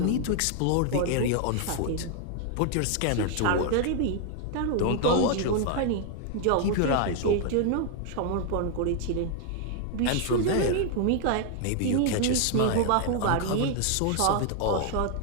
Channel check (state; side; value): different; both; correlation 0.00